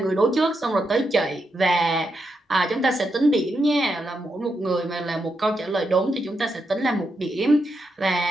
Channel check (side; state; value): both; normal; correlation 0.84